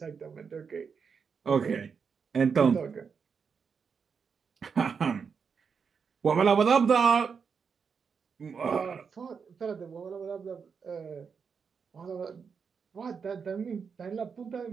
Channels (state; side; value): quieter; left; 6.0 dB